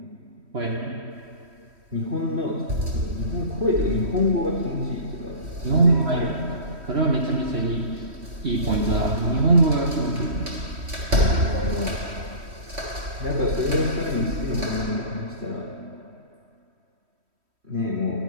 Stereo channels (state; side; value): late; left; 3.1 ms